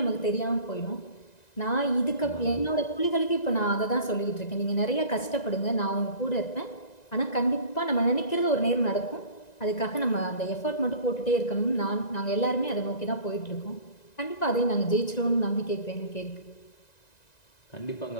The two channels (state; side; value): late; right; 1.9 ms